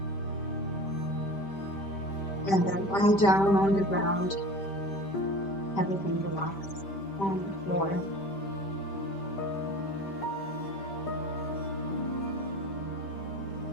And then lie down on the ground. Everything relax on the floor.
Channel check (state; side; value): late; right; 5.1 ms